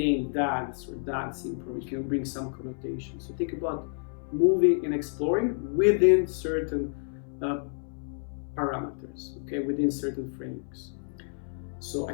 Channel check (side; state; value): right; silent; 58 dB below the other